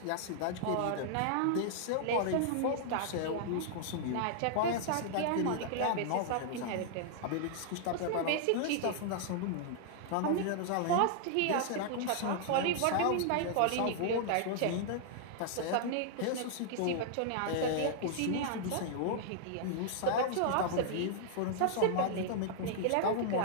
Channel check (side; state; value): both; different; correlation -0.01